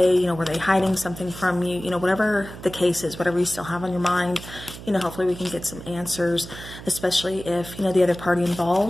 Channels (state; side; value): noise; right; hum, 14 dB below the sound